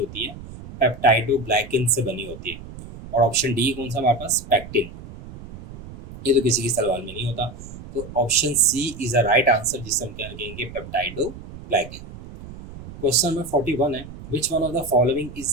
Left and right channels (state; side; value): noise; right; rumble, 14 dB below the sound